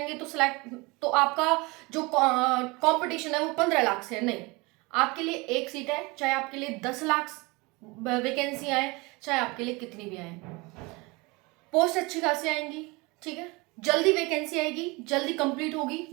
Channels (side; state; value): left; quieter; 25.4 dB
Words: तो आपका जो कंपटीशन है वो 15 लाख से है। नहीं, आपके लिए एक सीट है, चाहे आपके लिए 10 लाख वैकेंसी आए, चाहे आपके लिए कितनी भी आए, पोस्ट अच्छी खासी आएंगी। ठीक है, जल्दी वैकेंसी आएगी, जल्दी कंप्लीट होगी।